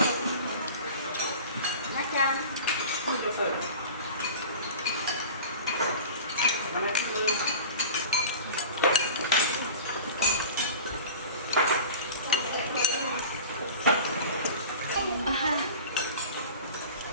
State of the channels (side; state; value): both; inverted; correlation -0.37